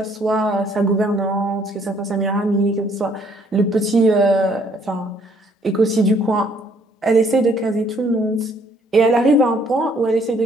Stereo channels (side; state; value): both; normal; correlation 0.64